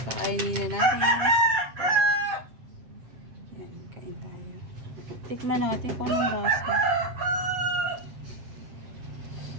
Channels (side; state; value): left; late; 7.9 ms